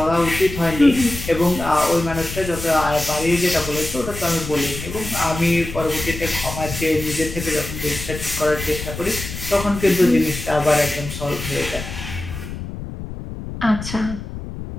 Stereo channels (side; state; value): left; noise; rumble, 9 dB below the sound